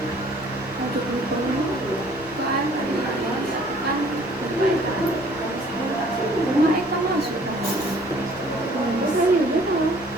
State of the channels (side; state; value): right; noise; rumble, 24 dB below the sound